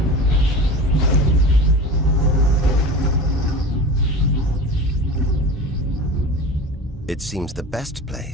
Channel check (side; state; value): both; normal; correlation 0.33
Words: It seems the best